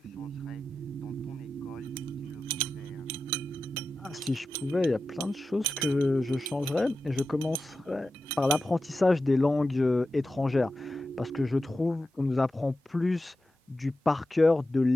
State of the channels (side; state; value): both; normal; correlation 0.92